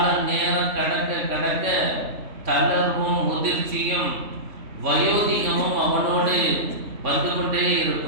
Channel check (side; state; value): left; late; 3.6 ms